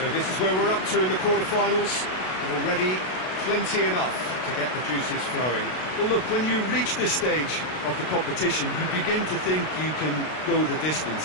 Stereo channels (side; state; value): right; late; 32 ms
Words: this is where we're up to in the quarter-finals. Already plenty enough to get the juices flowing. Well, look, when you reach this stage of the competition, you begin to think you can go the